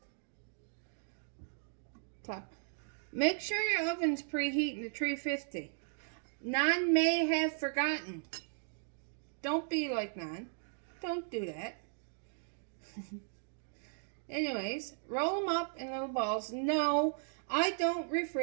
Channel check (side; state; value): left; silent; digital silence